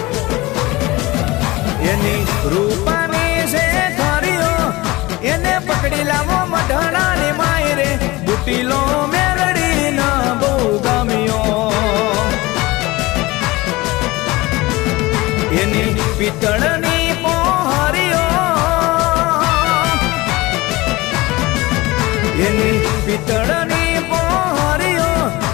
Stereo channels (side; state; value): right; quieter; 21.0 dB